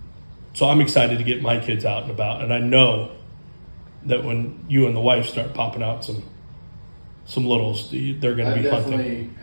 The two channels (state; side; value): inverted; both; correlation -1.00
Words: So I'm excited to get my kids out and about, and I know that when you and the wife start popping out some littles, they're going I to be definitely hunting.